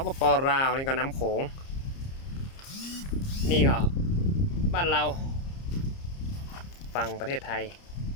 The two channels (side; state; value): right; late; 30 ms